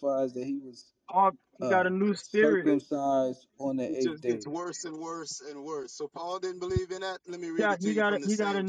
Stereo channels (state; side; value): identical; both; correlation 1.00